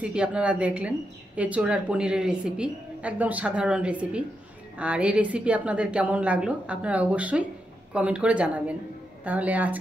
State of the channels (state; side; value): normal; both; correlation 0.85